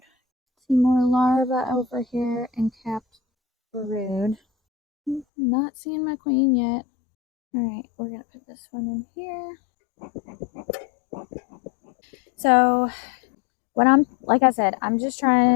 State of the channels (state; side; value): drops out; right; at 5.2 s